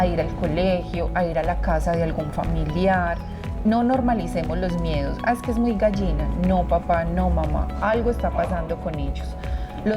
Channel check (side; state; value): both; identical; correlation 1.00